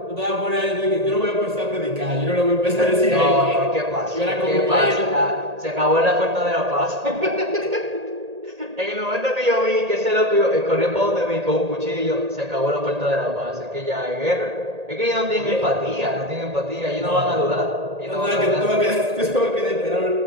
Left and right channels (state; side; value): late; left; 1.8 ms